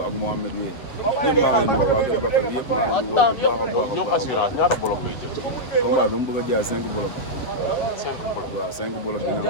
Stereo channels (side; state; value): right; late; 8.1 ms